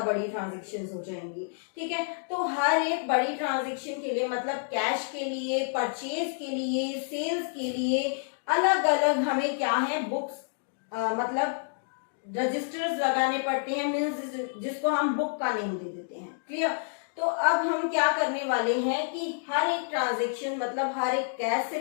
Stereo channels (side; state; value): right; silent; digital silence